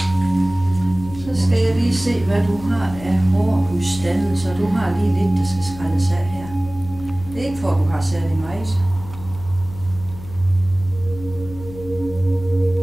Så skal jeg lige se, hvad du har af hårudstande, så du har lige lidt, der skal skrælles af her. Det er ikke for, at du har særlig meget.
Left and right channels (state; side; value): noise; left; hum, 15 dB below the sound